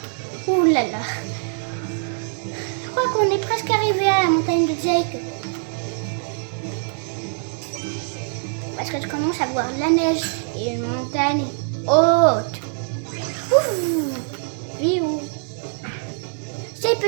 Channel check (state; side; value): silent; left; digital silence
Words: Ouh là là. Je crois qu'on est presque arrivé à la montagne de Jake. Parce que je commence à voir de la neige et une montagne haute. Ouh. Viou. Ces